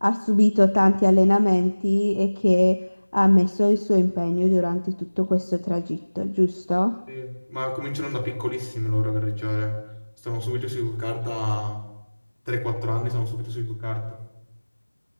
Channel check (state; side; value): inverted; both; correlation -1.00